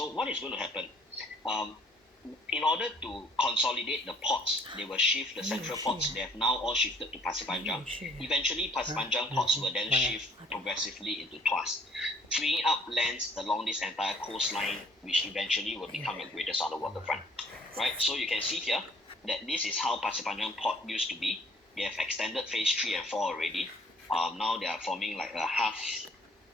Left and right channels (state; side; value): normal; both; correlation 0.59